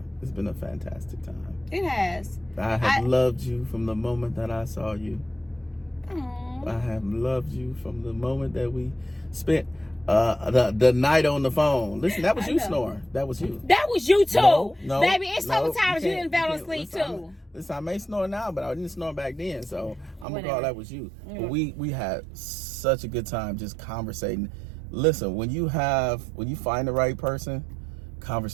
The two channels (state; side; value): drops out; left; at 20.2 s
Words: It's been a fantastic time. It has. I have loved you from the moment that I saw you. Aww. I have loved you from the moment that we spent the night on the phone. Listen, that was you snoring. That was you. That was you too. No, baby, it's sometimes you didn't fall asleep too. Listen, I may snore now, but I didn't snore back then, so I'm gonna call that was you. But we had such a good time just conversating. Listen, when you find the right person,